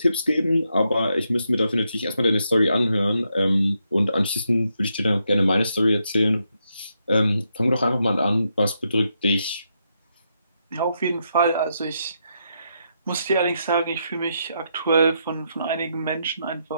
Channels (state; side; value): inverted; both; correlation -0.81